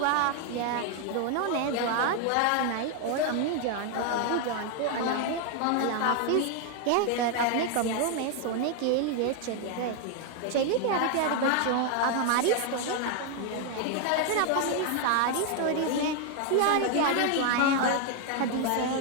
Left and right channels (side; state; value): both; different; correlation 0.01